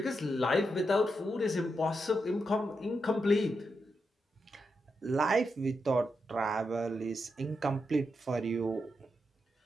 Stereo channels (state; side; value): normal; both; correlation 0.85